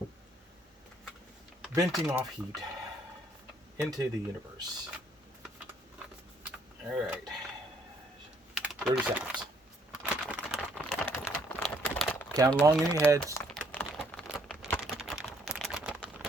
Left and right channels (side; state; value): both; normal; correlation 0.66